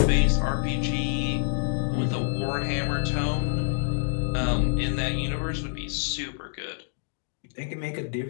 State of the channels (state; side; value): silent; right; 60 dB below the other